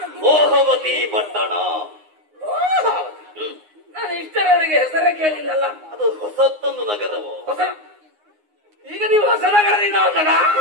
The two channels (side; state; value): left; late; 9.6 ms